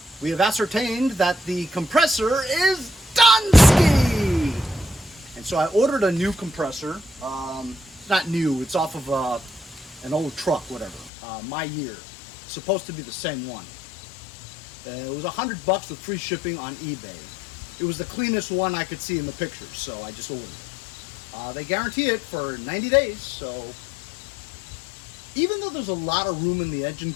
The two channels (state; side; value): drops out; right; at 11.1 s